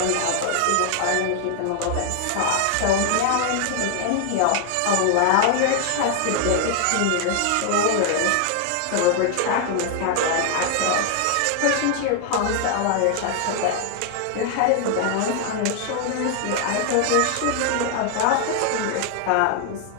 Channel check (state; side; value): different; both; correlation 0.00